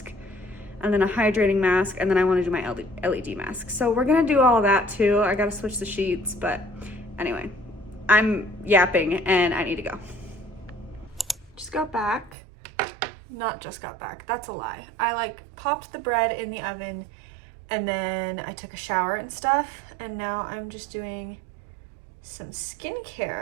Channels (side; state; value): left; drops out; at 12.4 s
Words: and then a hydrating mask, and then I want to do my LED mask. So we're gonna do all that too. I gotta switch the sheets, but anyway, I'm yapping and I need to go. Just got back. Not just got back, that's a lie. I like popped the bread in the oven and then I took a shower and stuff, and now I'm just doing some